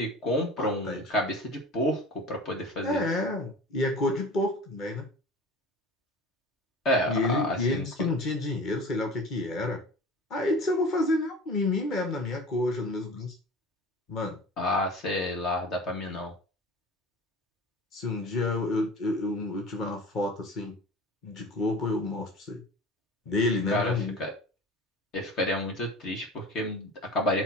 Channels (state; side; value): normal; both; correlation 0.38